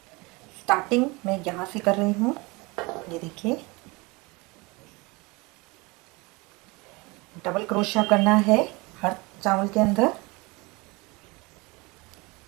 स्टार्टिंग मैं यहाँ से कर रही हूँ, ये देखिए डबल क्रोशिया करना है हर चावल के अंदर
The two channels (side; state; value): left; quieter; 25.4 dB